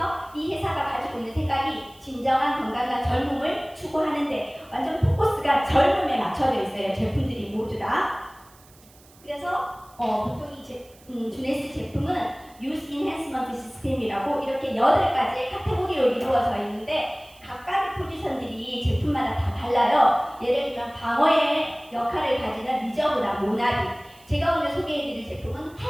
이 회사가 가지고 있는 생각이 진정한 건강과 젊음을 추구하는데 완전 포커스가 젊음에 맞춰져 있어요. 제품들이 모두 다. 그래서 보통 이 주네스 제품은 Youth Enhancement System이라고 이렇게 8가지의 카테고리로 이루어져 있는데 각각의 포지션들이 제품마다 다 달라요. 예를 들면 방어의 역할을 가지는 리저브나 모나리, 제가 오늘 소개해드릴 제품은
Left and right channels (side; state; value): right; noise; hiss, 26 dB below the sound